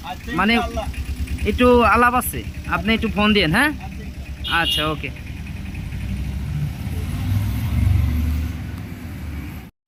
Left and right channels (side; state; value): both; identical; correlation 1.00